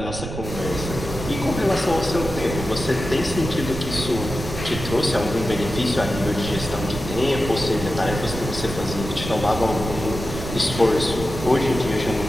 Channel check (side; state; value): right; noise; rumble, 7 dB below the sound